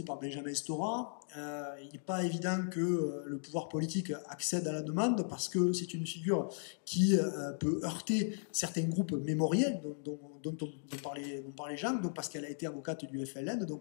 par Benjamin Stora. Il n'est pas évident que le pouvoir politique accède à la demande parce que c'est une figure qui peut heurter certains groupes mémoriels dont parlait Jean, donc parce qu'elle a été avocate du FLN.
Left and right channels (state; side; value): silent; right; digital silence